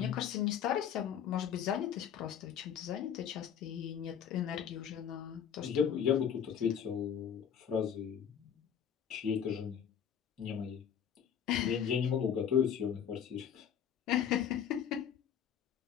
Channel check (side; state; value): right; quieter; 8.5 dB